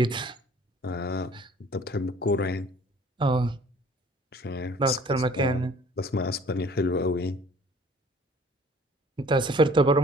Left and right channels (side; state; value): both; normal; correlation 0.53